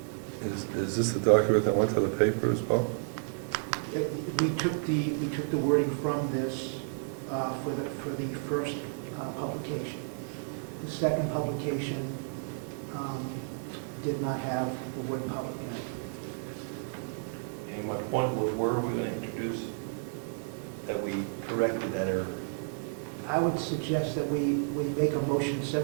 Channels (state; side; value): silent; left; digital silence